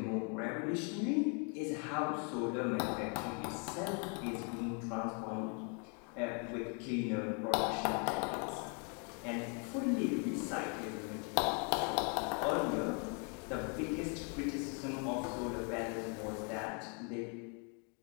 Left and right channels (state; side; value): quieter; right; 37.3 dB